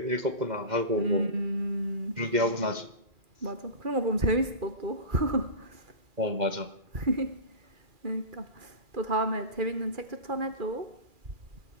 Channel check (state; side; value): late; left; 2.4 ms